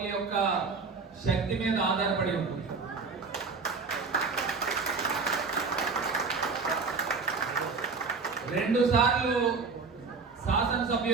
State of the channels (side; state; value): left; quieter; 4.7 dB